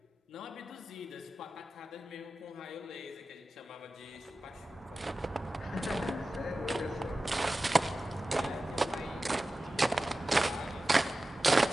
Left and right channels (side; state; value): both; normal; correlation 0.95